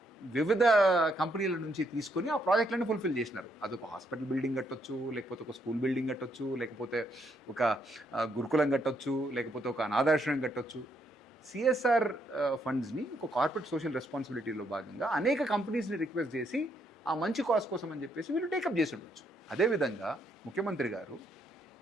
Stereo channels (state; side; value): normal; both; correlation 0.74